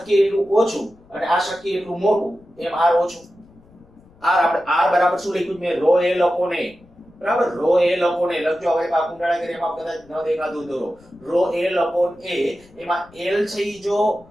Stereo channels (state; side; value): noise; left; rumble, 28 dB below the sound